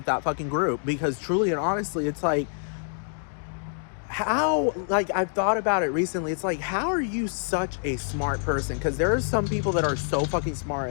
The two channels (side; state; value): right; silent; digital silence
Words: that fucking group, because truly and honestly, it's like, how, like, I've thought about it recently. It's like, how are you such a smart person? Because there are some people that are so fucking smart,